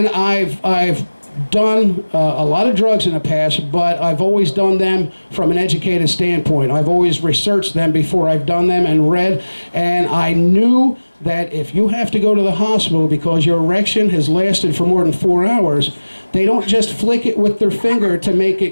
I've done a lot of drugs in the past, but I've always done them from an educated standpoint. I've always researched them before I've done them and read, and I knew that if you have to go to the hospital because your erection has lasted for more than 4 hours, they don't just flick it with their finger to make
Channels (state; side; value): inverted; both; correlation -1.00